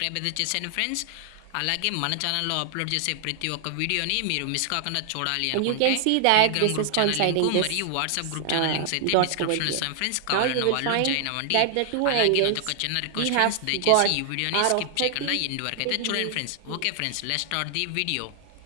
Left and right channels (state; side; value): different; both; correlation 0.00